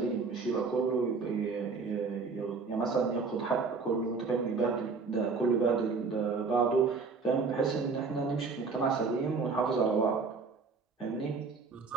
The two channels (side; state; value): left; quieter; 4.6 dB